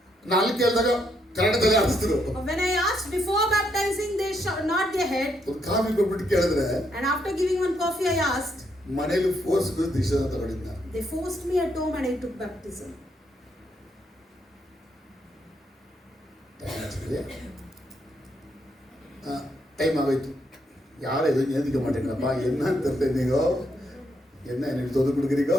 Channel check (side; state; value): both; normal; correlation 0.76